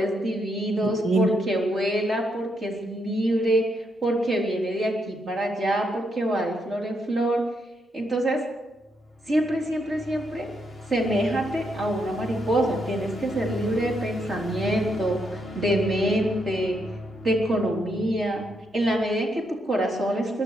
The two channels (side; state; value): both; normal; correlation 0.78